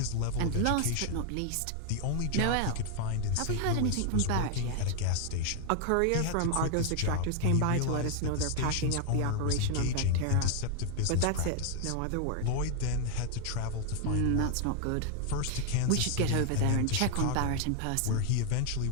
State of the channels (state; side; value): different; both; correlation 0.00